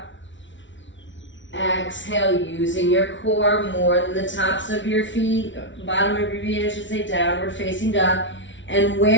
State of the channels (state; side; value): late; right; 0.55 ms